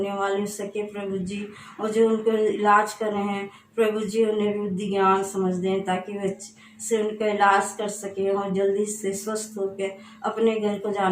वाले हो सके प्रभु जी। और जो उनको इलाज कर रहे हैं प्रभु जी उन्हें बुद्धि ज्ञान समझ दें ताकि वे से उनका इलाज कर सके और जल्दी से स्वस्थ होकर अपने घर को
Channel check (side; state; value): both; identical; correlation 1.00